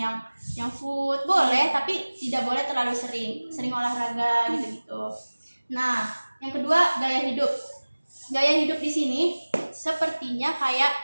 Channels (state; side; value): inverted; both; correlation -1.00